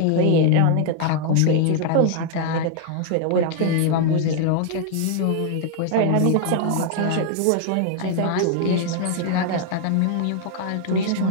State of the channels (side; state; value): both; different; correlation 0.00